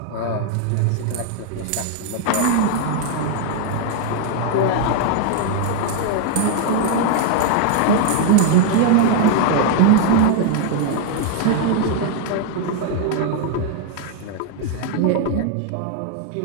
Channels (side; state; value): both; different; correlation 0.00